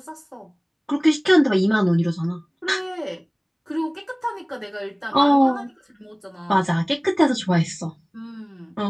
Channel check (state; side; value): identical; both; correlation 1.00